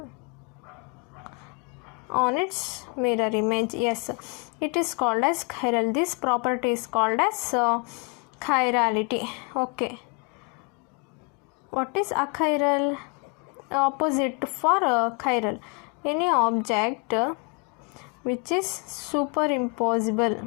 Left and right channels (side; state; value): right; quieter; 32.5 dB